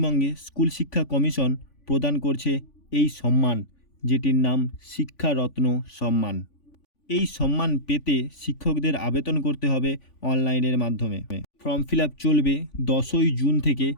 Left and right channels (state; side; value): late; right; 3.5 ms